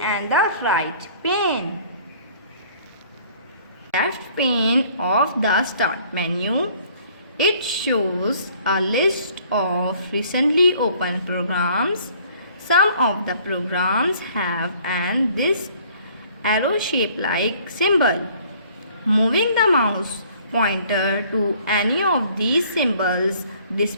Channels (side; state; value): both; inverted; correlation -0.56